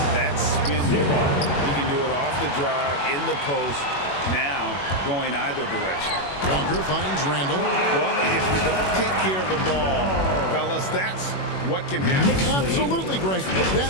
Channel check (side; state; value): right; late; 21 ms